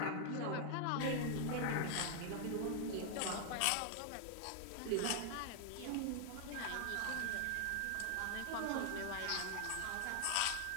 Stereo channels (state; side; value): different; both; correlation 0.00